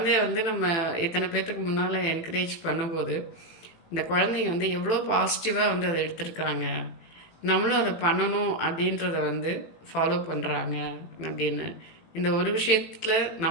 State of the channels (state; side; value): late; right; 18 ms